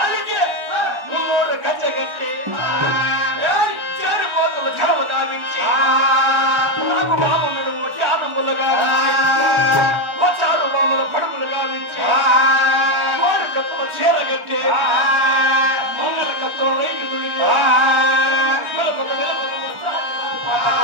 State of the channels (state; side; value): late; left; 1.4 ms